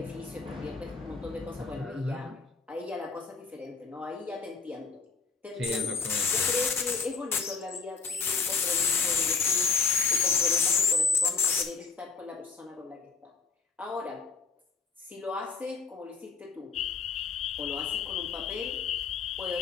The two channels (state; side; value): quieter; right; 5.0 dB